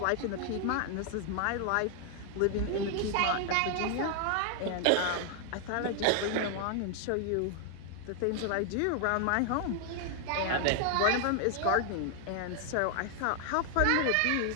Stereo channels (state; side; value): different; both; correlation 0.00